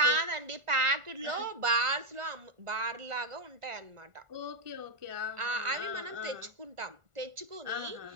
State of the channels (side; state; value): left; late; 1.4 ms